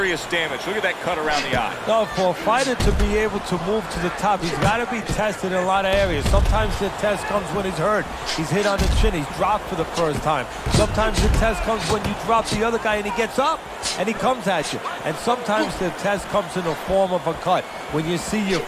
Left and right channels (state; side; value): identical; both; correlation 1.00